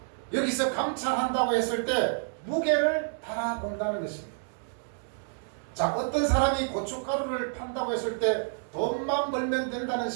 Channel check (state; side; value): silent; left; digital silence